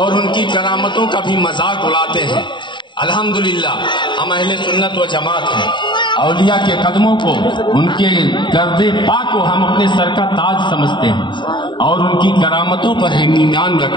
ان کی کرامتوں کا بھی مذاق اڑاتے ہیں۔ الحمدللہ ہم اہل سنت و جماعت ہیں، اولیاء کے قدموں کو، ان کے گرد پاک کو ہم اپنے سر کا تاج سمجھتے ہیں اور ان کی کرامتوں پر ہم ایمان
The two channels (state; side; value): late; right; 0.23 ms